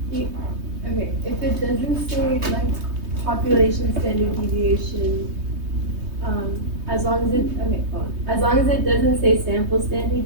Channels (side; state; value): left; late; 3.2 ms